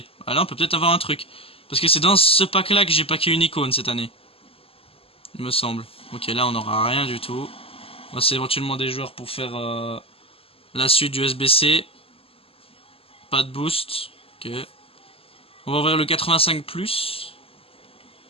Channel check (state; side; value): late; right; 0.28 ms